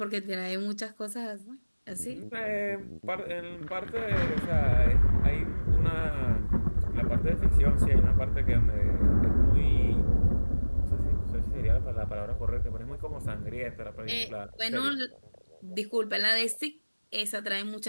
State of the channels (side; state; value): both; inverted; correlation -1.00